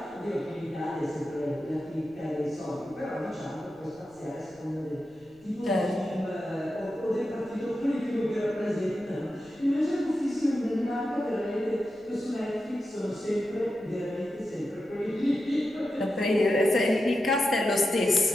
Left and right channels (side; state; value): left; noise; rumble, 30 dB below the sound